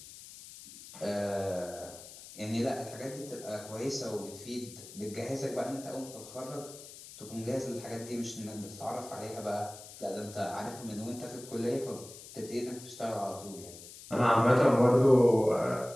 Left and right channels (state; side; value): noise; left; hiss, 16 dB below the sound